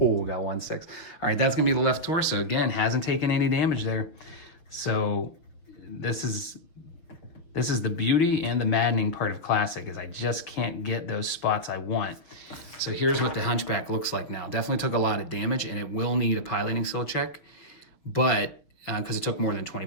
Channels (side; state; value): right; late; 6.5 ms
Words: got 1-6. All right, that's gonna be the left torso. Again, hasn't taken any damage there. So this is the beauty and the maddening part of Classic is I just can't get those spots I want. So here's what the Hunchback looks like now. Definitely took a lot of damage and it will need a piloting skill check, but because it took more than 20